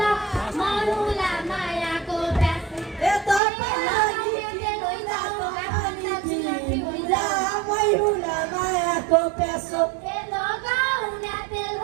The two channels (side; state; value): left; drops out; at 3.4 s